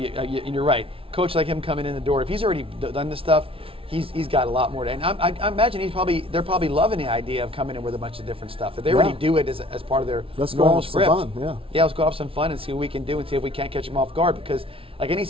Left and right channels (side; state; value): left; late; 0.26 ms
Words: right. Coach like him coming in the door, if he's already done this stuff, he's got a lot more to. And I imagine they're probably loving the idea of coming in with a bunch of different stuff. If they already do it as part of their normal script, some fun, let's go have some fun and see what we can do and see if we can't catch them off guard. Because like any